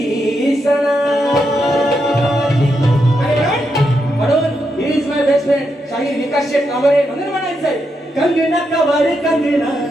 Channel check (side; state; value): both; normal; correlation 0.83